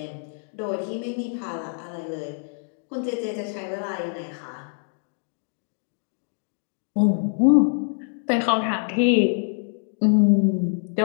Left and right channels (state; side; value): silent; right; 61 dB below the other